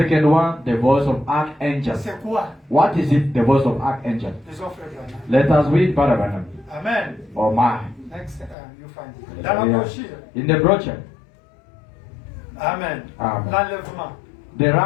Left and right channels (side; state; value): right; drops out; at 8.6 s